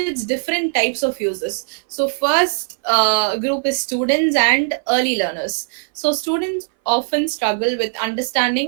different types of users. So first group is students and early learners. So students often struggle with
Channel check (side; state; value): left; silent; 60 dB below the other